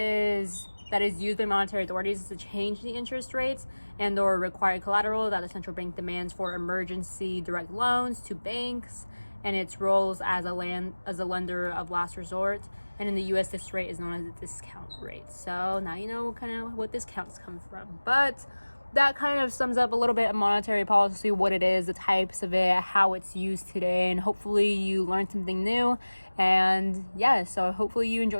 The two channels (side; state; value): both; inverted; correlation -1.00